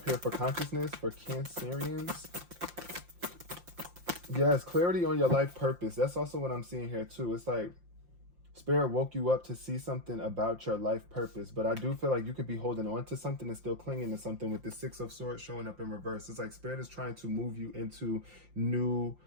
here for consciousness for Cancerians? Yes, clarity on your life purpose. That's also what I'm seeing here too. It's like Spirit woke you up to see something about your life purpose, but I do feel like you could be holding on to something and still clinging to something with the 6 of Swords showing up in reverse. It's like Spirit is trying to move you into new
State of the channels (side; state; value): left; late; 5.7 ms